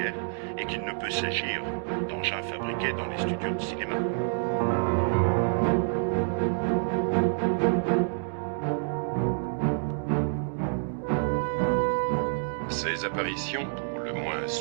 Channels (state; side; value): silent; left; digital silence